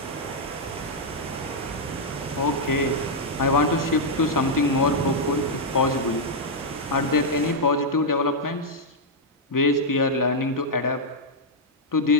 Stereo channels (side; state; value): both; normal; correlation -0.04